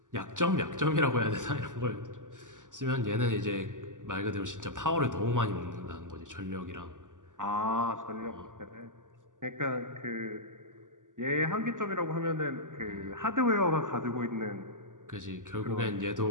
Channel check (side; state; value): left; late; 0.88 ms